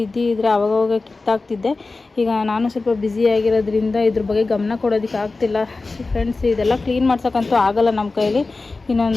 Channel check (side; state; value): right; quieter; 3.6 dB